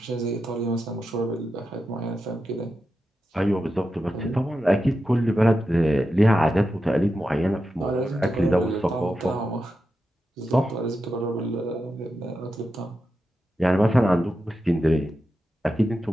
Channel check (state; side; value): normal; both; correlation 0.89